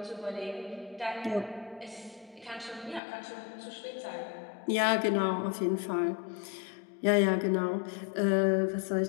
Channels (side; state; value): right; drops out; at 3.0 s